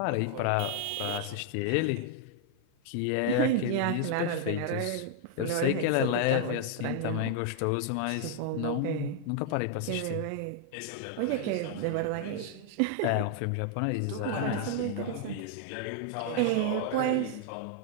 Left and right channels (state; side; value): different; both; correlation 0.00